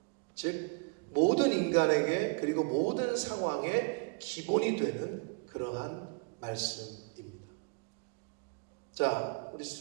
즉 모든 인간에게 그리고 모든 상황에 기본이 되는 그러한 말씀입니다. 자, 우리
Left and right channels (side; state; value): left; quieter; 34.9 dB